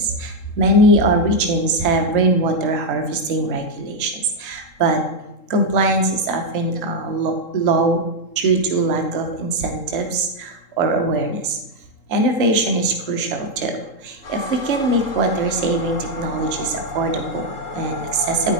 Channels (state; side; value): late; right; 3.8 ms